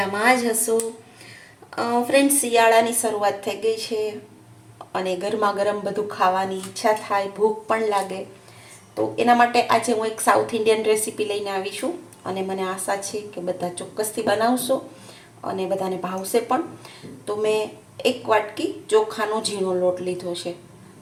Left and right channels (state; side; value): identical; both; correlation 1.00